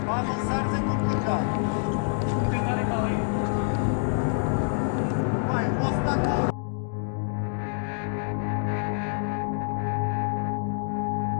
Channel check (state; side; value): silent; right; digital silence